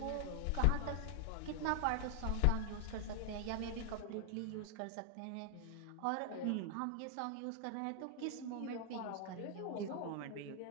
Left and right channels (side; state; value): both; different; correlation 0.00